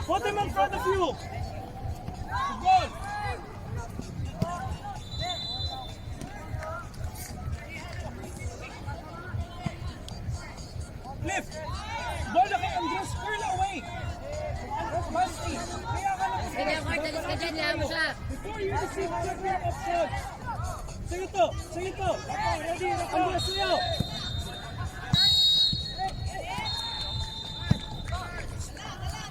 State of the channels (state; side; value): identical; both; correlation 1.00